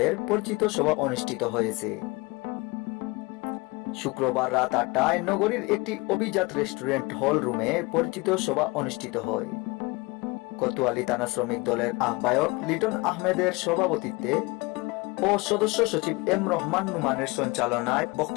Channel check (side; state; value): right; quieter; 24.9 dB